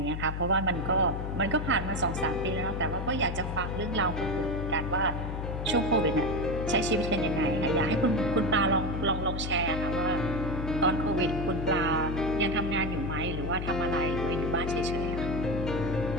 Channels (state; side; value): noise; left; hum, 4 dB below the sound